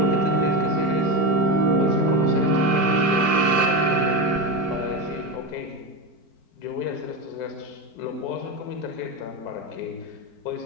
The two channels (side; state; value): right; late; 4.5 ms